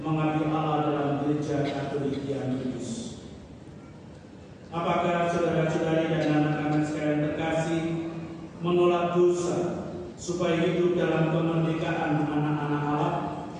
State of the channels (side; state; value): both; identical; correlation 1.00